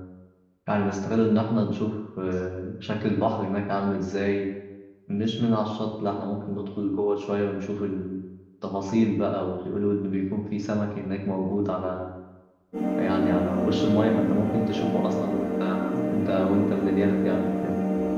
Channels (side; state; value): both; identical; correlation 1.00